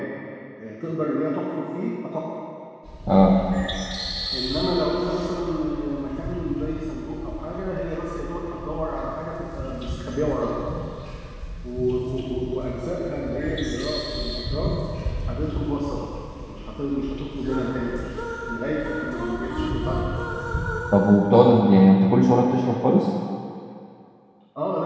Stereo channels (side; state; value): both; identical; correlation 1.00